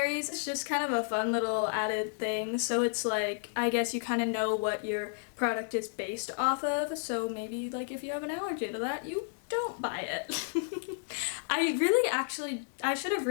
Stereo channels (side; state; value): right; silent; digital silence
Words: It's just kind of a fun little added thing. So it's like, I guess you kind of know what your product is based off of. So maybe like if you have an allergy to that, you don't buy it. I should have